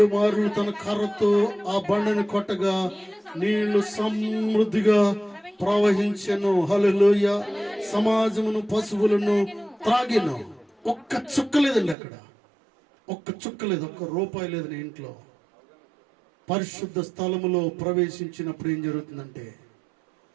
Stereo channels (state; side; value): drops out; left; at 12.0 s